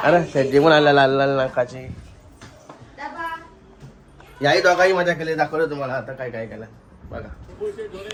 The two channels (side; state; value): both; identical; correlation 1.00